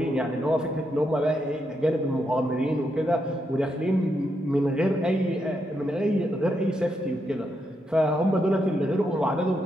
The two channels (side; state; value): both; normal; correlation 0.81